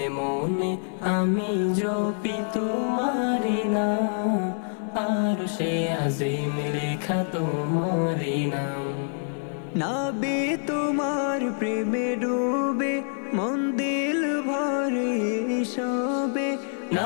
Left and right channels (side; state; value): right; silent; digital silence